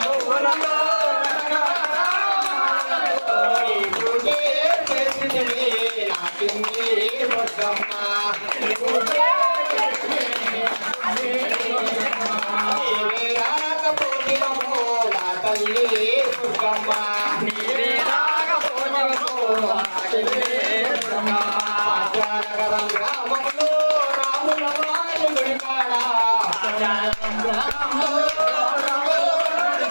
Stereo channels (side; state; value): both; inverted; correlation -1.00